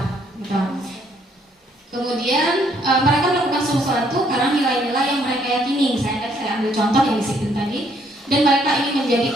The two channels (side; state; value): both; normal; correlation 0.68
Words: gitu. Kemudian mereka melakukan sesuatu karena nilai-nilai yang mereka yakini. Misalnya tadi saya ambil contoh yang disiplin tadi, dan mereka ingin menjadi